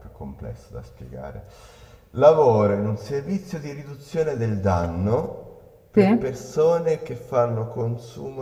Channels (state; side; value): identical; both; correlation 1.00